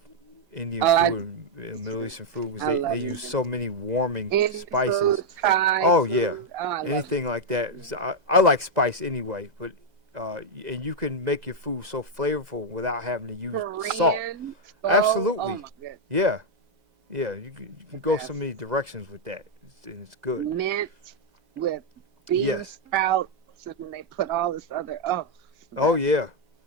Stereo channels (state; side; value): late; left; 2.0 ms